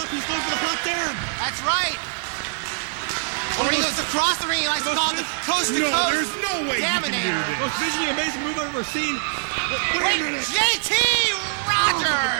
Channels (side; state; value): left; silent; digital silence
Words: He's going for the hot Damm. That's right. When he goes across the ring, he likes to call it coast to No, coast. there's no way he can do this. Most visually amazing move I've ever seen. Wait a minute. JT Rodgers! Oh my